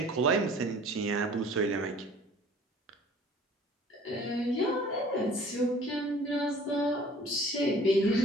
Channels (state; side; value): normal; both; correlation 0.50